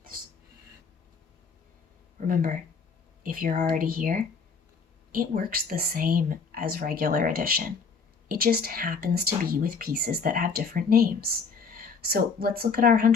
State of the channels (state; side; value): quieter; right; 5.2 dB